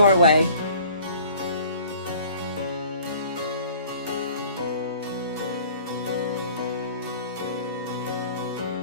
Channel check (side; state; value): both; inverted; correlation -0.49